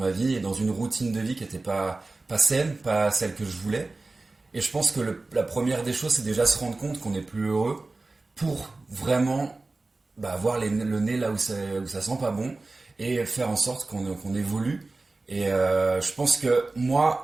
vie et dans une routine de vie qui n'était pas saine, pas celle que je voulais. Et je pense que la première des choses, c'est déjà se rendre compte qu'on n'est plus heureux pour vraiment avoir le nez là où ça sent pas bon et faire en sorte qu'on évolue. Et je pense que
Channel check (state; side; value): quieter; left; 3.3 dB